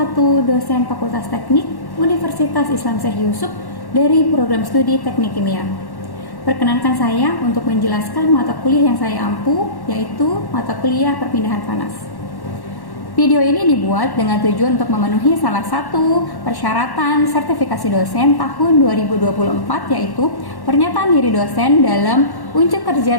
dosen Fakultas Teknik Universitas Islam Syekh Yusuf dari program studi Teknik Kimia. Perkenankan saya untuk menjelaskan mata kuliah yang saya ampu, yaitu mata kuliah perpindahan panas. Video ini dibuat dengan tujuan untuk memenuhi salah satu persyaratan sertifikasi dosen tahun 2024, yaitu pernyataan diri dosen dalam Unjuk Kerja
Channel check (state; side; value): late; right; 1.1 ms